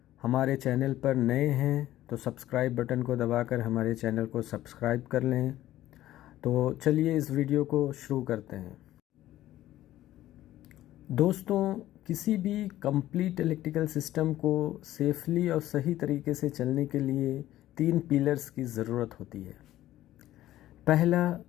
हमारे चैनल पर नए हैं तो सब्सक्राइब बटन को दबाकर हमारे चैनल को सब्सक्राइब कर लें। तो चलिए इस वीडियो को शुरू करते हैं। दोस्तों, किसी भी कंप्लीट इलेक्ट्रिकल सिस्टम को सेफली और सही तरीके से चलने के लिए 3 पिलर्स की ज़रूरत होती है। पहला,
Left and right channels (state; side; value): quieter; right; 14.3 dB